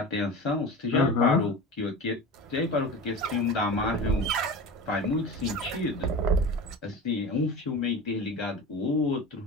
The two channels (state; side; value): normal; both; correlation 0.31